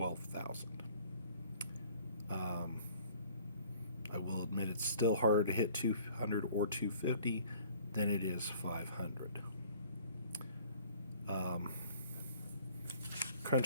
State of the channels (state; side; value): inverted; both; correlation -0.53